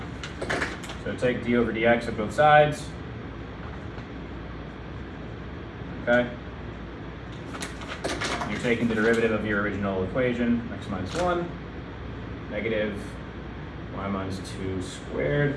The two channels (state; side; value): identical; both; correlation 1.00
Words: So take d over dx at both sides. Okay? You're taking the derivative of your original equation, x minus 1, negative y minus 2 squared.